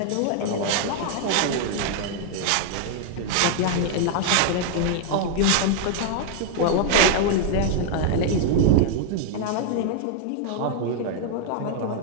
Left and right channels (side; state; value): both; different; correlation 0.00